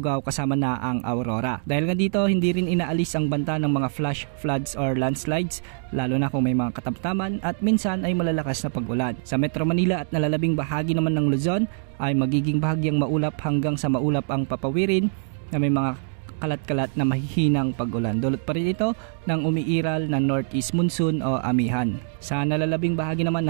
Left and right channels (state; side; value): silent; left; digital silence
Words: kasama na ang Aurora. Dahil nga dito, hindi rin inaalis ang banta ng mga flash floods or landslides, lalo na kung may mga katamtaman at minsan ay malalakas na pag-ulan. Sa Metro Manila at nalalabing bahagi naman ng Luzon ay magiging bahagyang maulap hanggang sa maulap ang papawirin na may mga kalat-kalat na mahihinang pag-ulan. Dulot pa rin ito ng umiiral na northeast monsoon o amihan. Sa nalalabing bahagi naman